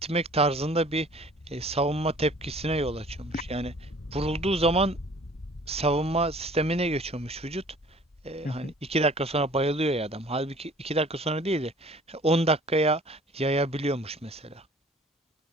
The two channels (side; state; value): both; normal; correlation 0.50